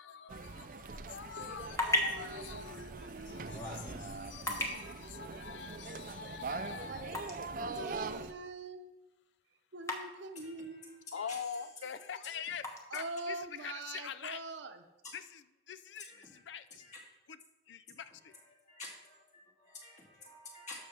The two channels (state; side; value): normal; both; correlation -0.16